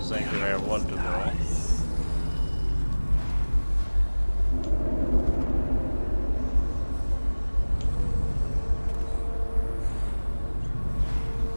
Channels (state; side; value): inverted; both; correlation -1.00